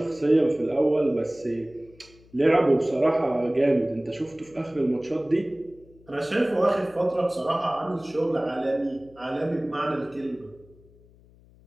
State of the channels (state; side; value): noise; left; hum, 27 dB below the sound